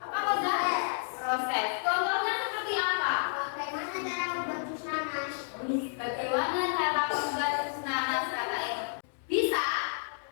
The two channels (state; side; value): silent; right; digital silence